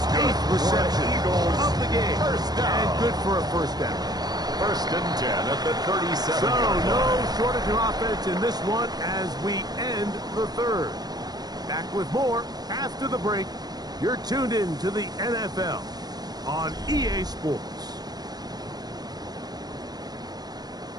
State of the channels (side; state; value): left; late; 0.19 ms